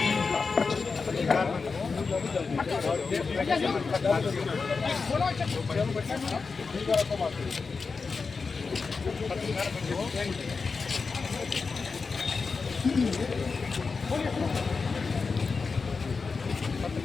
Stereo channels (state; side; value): quieter; right; 4.7 dB